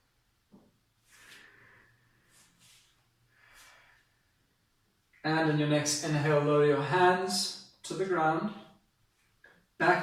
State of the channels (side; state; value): both; identical; correlation 1.00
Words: And in your next inhale, lower your hands to the ground.